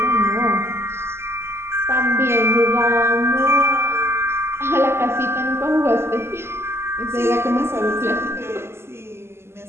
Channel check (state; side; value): late; left; 0.12 ms